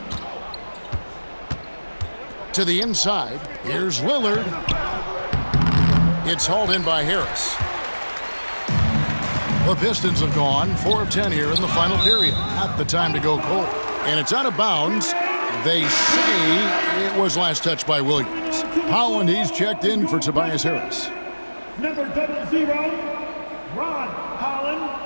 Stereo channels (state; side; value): inverted; both; correlation -1.00